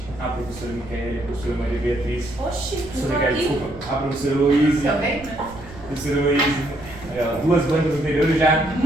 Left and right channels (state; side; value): noise; right; rumble, 17 dB below the sound